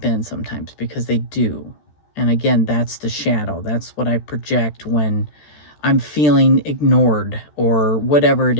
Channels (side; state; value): right; late; 13 ms